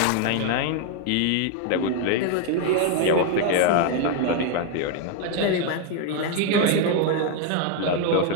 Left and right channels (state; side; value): different; both; correlation 0.00